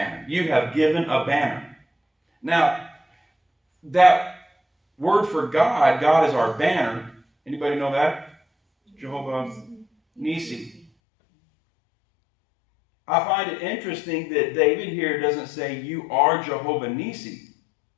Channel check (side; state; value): right; drops out; at 10.9 s